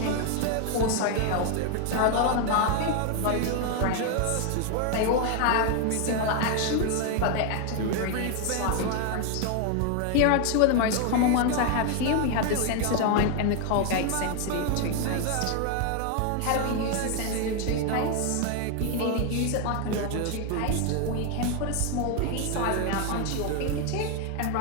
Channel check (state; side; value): different; both; correlation 0.01